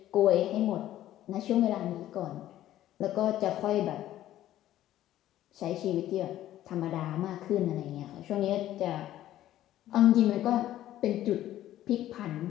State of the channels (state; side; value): quieter; right; 13.3 dB